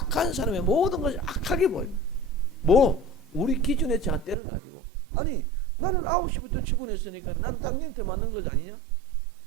사람의 모든 것이 악하게 보여요. 우리 기준의 잣대를 가지고 아니 나는 9시부터 출근했으니까 난 당연히 더 맞는 것 아니냐?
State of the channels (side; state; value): left; drops out; at 4.4 s